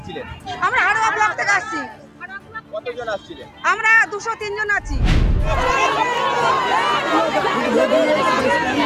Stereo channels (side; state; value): both; identical; correlation 1.00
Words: আমরা হাড়োয়া ব্লক থেকে আসছি। কতজন আসছিলেন? আমরা 203 জন আছি।